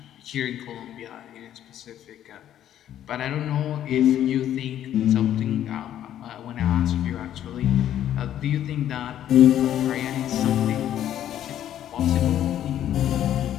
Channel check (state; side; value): quieter; right; 11.2 dB